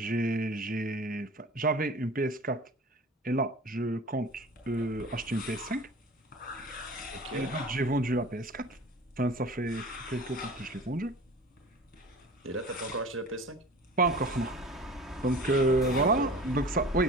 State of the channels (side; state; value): both; normal; correlation 0.40